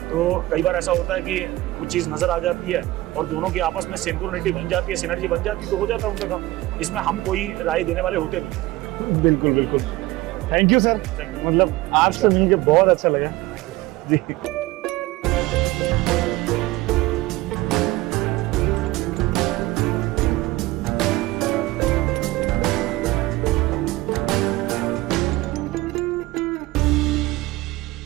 तो कई बार ऐसा होता है कि कुछ चीज़ नज़र आ जाती है और दोनों की आपस में सिंक्रोनिटी बन जाती है, सिनर्जी बन जाती है, तो हो जाता है उनका काम। इसमें हम कोई राय देने वाले होते नहीं, बिल्कुल बिल्कुल, थैंक यू सर, मतलब आपसे मिलके बहुत अच्छा लगा जी।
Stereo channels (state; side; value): quieter; left; 18.5 dB